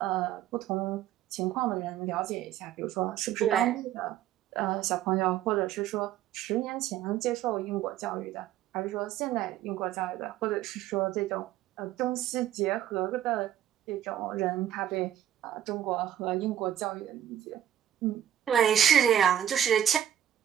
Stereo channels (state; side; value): quieter; left; 11.1 dB